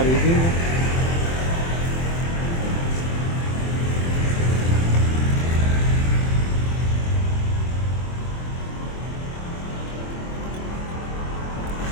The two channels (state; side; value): late; right; 24 ms